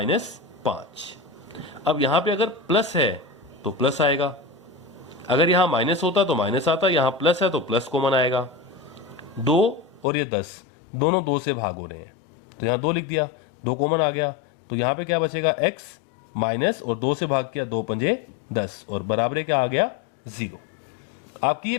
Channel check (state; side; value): drops out; right; at 10.1 s